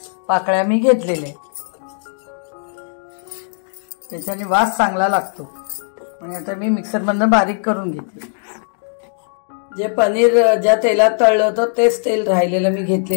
पाकळ्या मी घेतलेल्या आहेत, त्याच्याने वास चांगला लागतो। आणि आता मी मिक्सरमधून बारीक करून घेते। जे पनीर ज्या तेलात तळलं होतं तेच तेल राहिलेलं मी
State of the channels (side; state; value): right; silent; digital silence